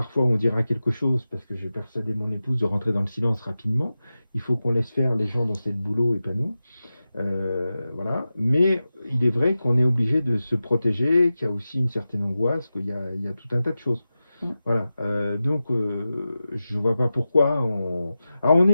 fois où on dira quelque chose, parce que j'ai persuadé mon épouse de rentrer dans le silence rapidement. Il faut qu'on laisse faire les gens dans cette boulot et pas nous. Voilà. Mais il est vrai qu'on est obligé de se protéger, qu'il y a aussi une certaine angoisse, qu'il y a tout un tas de choses. Voilà. Donc, je ne vois pas pourquoi. Alors, on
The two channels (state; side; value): inverted; both; correlation -0.93